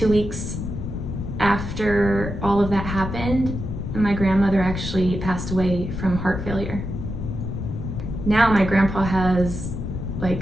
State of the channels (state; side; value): noise; left; rumble, 5 dB below the sound